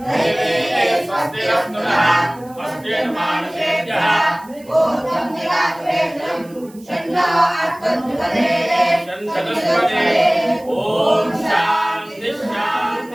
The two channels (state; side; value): noise; right; hiss, 25 dB below the sound